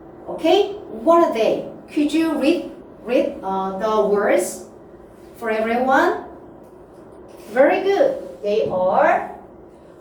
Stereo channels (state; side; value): identical; both; correlation 1.00